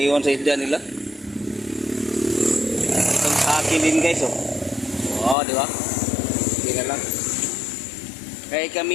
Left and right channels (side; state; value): right; drops out; at 5.4 s